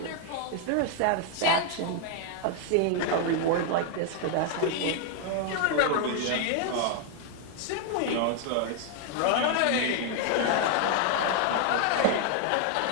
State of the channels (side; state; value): both; different; correlation 0.00